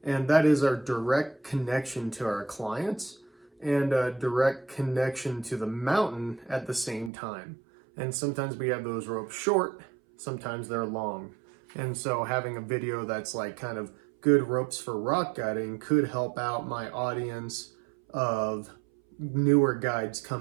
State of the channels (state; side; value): drops out; left; at 7.1 s